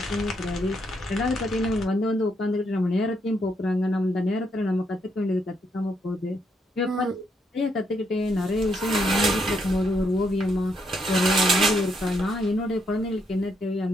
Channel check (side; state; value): both; normal; correlation 0.76